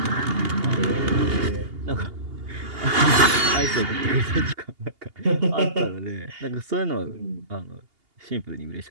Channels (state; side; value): late; left; 2.8 ms